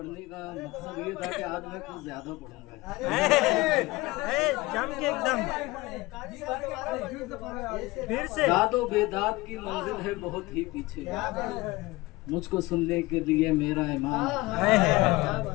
का मकसद ये था कि आज मैं कुछ ज्यादा पढ़ूंगा। जम के एकदम फिर से दादो बेदात की मंजिल है बहुत ही पीछे, मुझको सुनने के लिए मेरा इमाम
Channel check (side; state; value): right; quieter; 21.0 dB